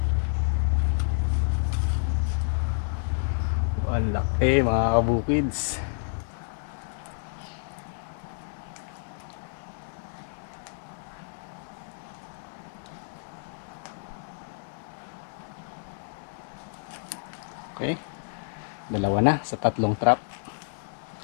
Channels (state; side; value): silent; right; digital silence